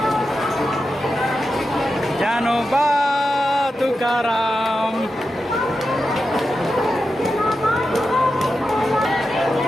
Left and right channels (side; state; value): both; normal; correlation 0.90